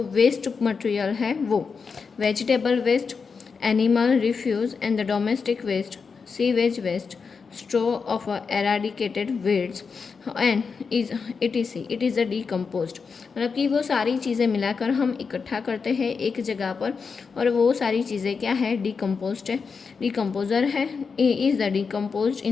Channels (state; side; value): quieter; right; 5.3 dB